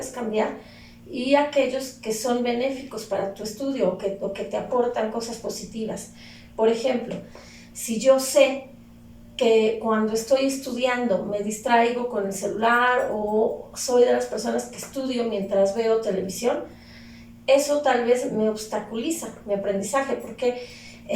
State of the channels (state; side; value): identical; both; correlation 1.00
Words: cambiar, y aquellos que son benéficos para tu estudio o que te aportan cosas positivas. Por ejemplo, si yo sé que cuando estoy estudiando me distraigo con el celular o soy de las personas que estudio mientras veo televisión, eso tal vez me obstaculiza mi aprendizaje porque